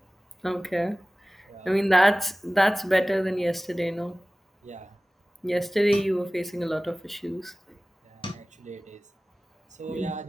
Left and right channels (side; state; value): both; normal; correlation 0.97